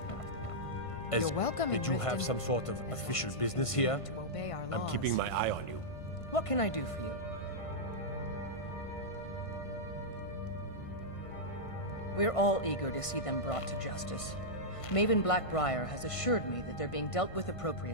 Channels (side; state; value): right; late; 1.5 ms